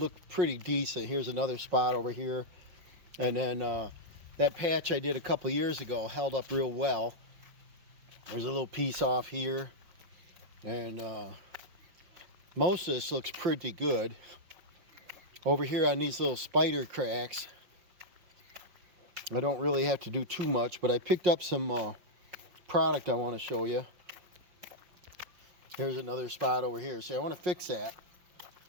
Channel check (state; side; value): late; left; 5.5 ms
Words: pretty decent. Here's another spot over here. And then that patch I did a couple years ago held up real well. There's a little piece off here. And most of this looks pretty good. Over here on these little spider cracks, I don't really have to do too much, but I picked up some product I want to show you. Here's another spot over here. See, I want to fix that.